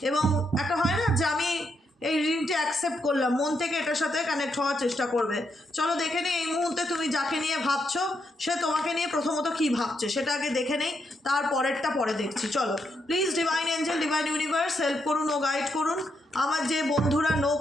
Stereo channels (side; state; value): both; normal; correlation 0.80